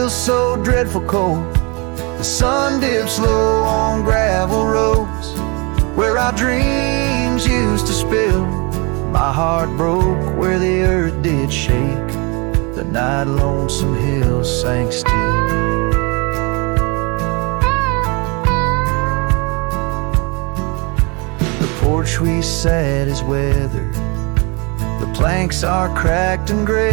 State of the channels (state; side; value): quieter; left; 29.6 dB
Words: so dreadful cold. The sun dips low on gravel roads where our dreams used to spill. My heart broke where the earth did shake, the night Lonesome Hill sank still. The porch we sat is weathered, the planks are cracked and